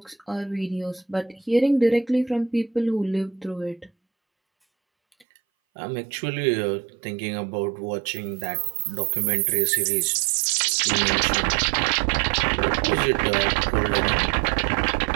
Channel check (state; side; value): drops out; left; at 5.2 s